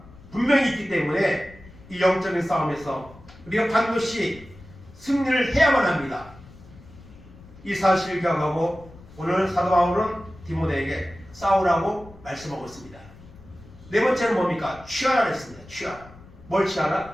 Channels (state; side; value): noise; left; rumble, 21 dB below the sound